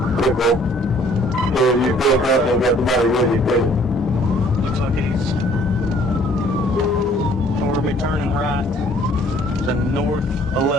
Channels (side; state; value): both; normal; correlation 0.59